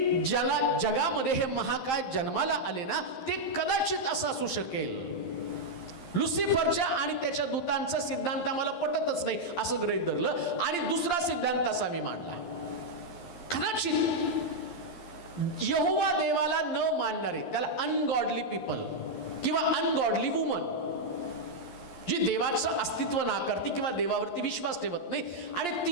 ज्याला जगामध्ये हे महाकाय जन्माला आले ना, ते कदाचित असं असू शकेल. लुसिफरच्या आणि त्याच्या दूतांचा सिद्धांत आम्हाला पटतच नाही असं गृहीत धरलं आणि दुसरा सिद्धांत असा मी मांडला. कदाचित यहोवा देवाला न मानणारे, त्याला अनगॉडली पीपल किंवा अनगॉडली वुमन, जी देवाचं अस्तित्व नाकारती किंवा देवावरती विश्वास ठेवत नाही, आणि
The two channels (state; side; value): late; right; 11 ms